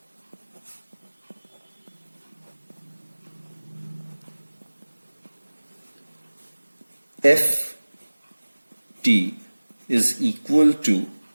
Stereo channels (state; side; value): inverted; both; correlation -1.00